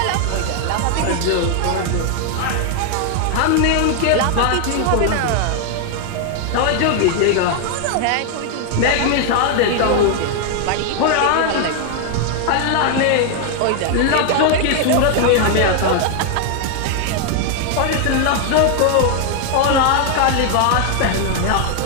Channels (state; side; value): different; both; correlation 0.00